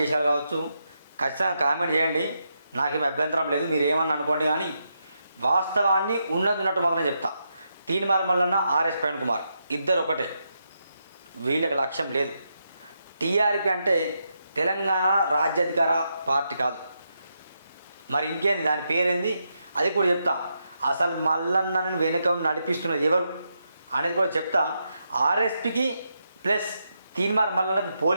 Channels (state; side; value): inverted; both; correlation -0.83